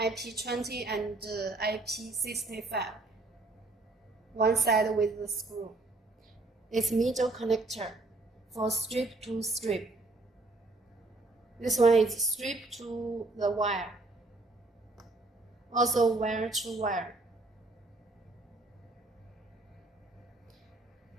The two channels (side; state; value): left; quieter; 3.2 dB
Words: and IP65. One side with the screw. It's middle connector for strip to strip. This one is strip to the wire. Also wire to wire.